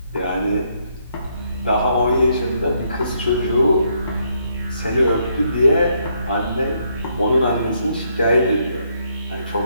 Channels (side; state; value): both; inverted; correlation -0.74